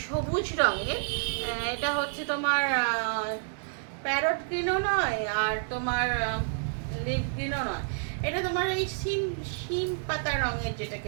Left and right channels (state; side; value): silent; left; digital silence